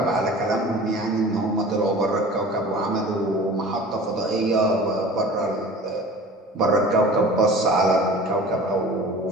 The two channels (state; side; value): normal; both; correlation 0.41